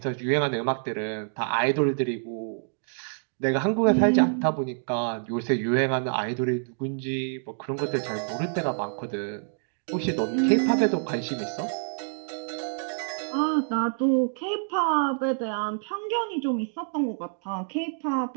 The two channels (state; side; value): silent; left; digital silence